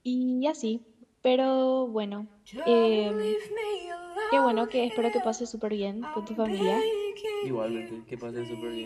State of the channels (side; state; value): both; identical; correlation 1.00